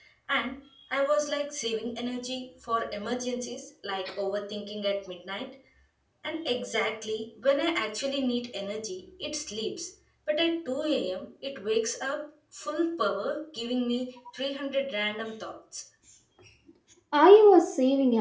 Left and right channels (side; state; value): both; identical; correlation 1.00